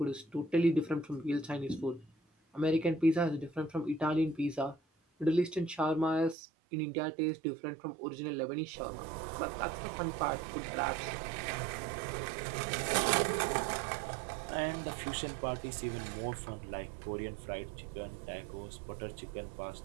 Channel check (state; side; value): drops out; left; at 6.4 s